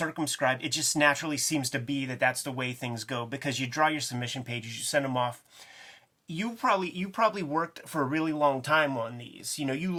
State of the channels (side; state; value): both; identical; correlation 1.00